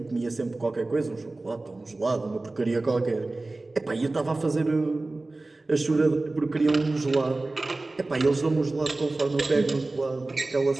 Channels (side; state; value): left; quieter; 3.1 dB